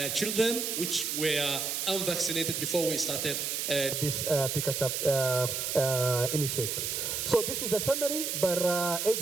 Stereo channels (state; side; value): noise; right; hiss, 1 dB below the sound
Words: children, which were unvaccinated before we started this Pikachu initiation. So this is a summary per